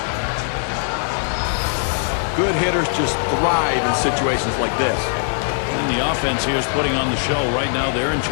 Good hitters just thrive in situations like this. And the offense here is putting on the show. Right now, they're in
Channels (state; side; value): silent; right; digital silence